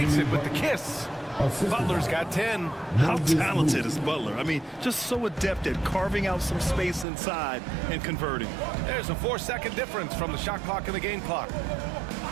it with the kiss. Butler's got 10. How talented is Butler? I mean, just so adept at carving out some space inside and converting. There's a 4-second difference from the shot clock and the game clock.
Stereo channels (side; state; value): left; drops out; at 7.1 s